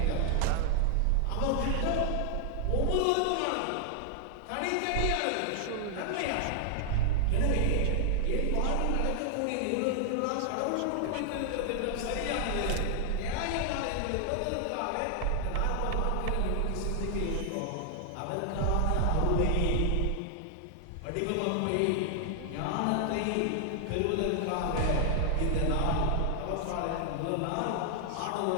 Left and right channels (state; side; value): different; both; correlation 0.00